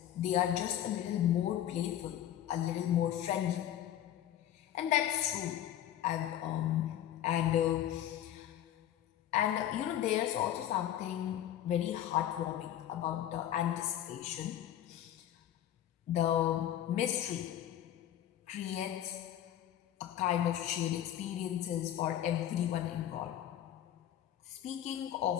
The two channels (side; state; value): right; quieter; 11.4 dB